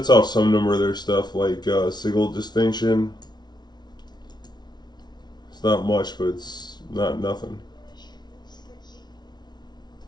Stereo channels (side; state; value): right; late; 0.20 ms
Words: off some number of their stuff, like Sigil Distinction. It's not much, but it's not nothing.